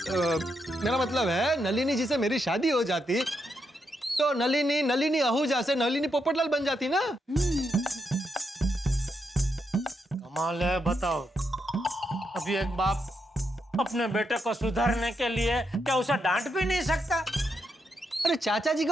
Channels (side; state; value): both; normal; correlation 0.82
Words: मेरा मतलब है, नलिनी जी से मेरी शादी हो जाती तो नलिनी आहूजा से नलिनी पोपटलाल बन जाती ना। कमाल है, बताओ। अभी एक बाप अपने बेटे को सुधारने के लिए क्या उसे डांट भी नहीं सकता? अरे चाचा जी